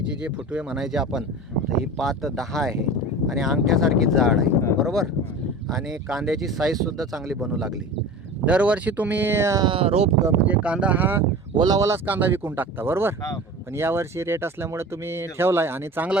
जे फुटवे म्हणायचे आपण, तर ही पात 10 आहे आणि अंगठ्यासारखी जाड आहे, बरोबर. आणि कांद्याची साईजसुद्धा चांगली बनू लागली. दरवर्षी तुम्ही रोप म्हणजे कांदा हा ओलावालाच कांदा विकून टाकता, बरोबर. हां बरोबर. पण यावर्षी रेट असल्यामुळे तुम्ही ठेवलाय आणि चांगला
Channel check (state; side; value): normal; both; correlation 0.35